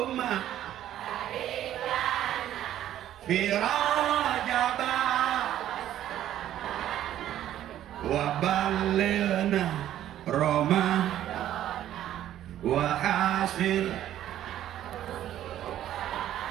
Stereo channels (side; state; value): left; quieter; 12.0 dB